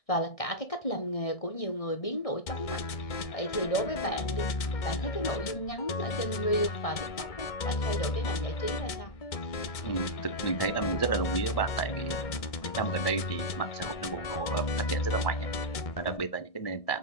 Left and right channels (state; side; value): late; right; 1.7 ms